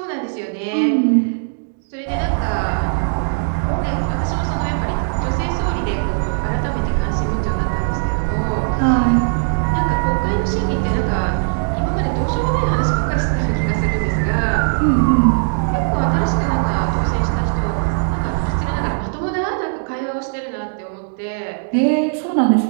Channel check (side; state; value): left; silent; digital silence